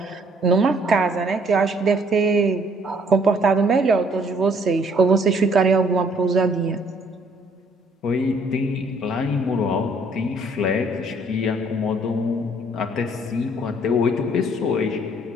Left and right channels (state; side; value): normal; both; correlation 0.63